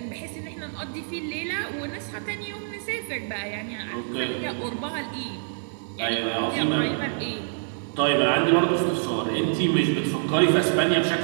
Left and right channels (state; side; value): silent; left; digital silence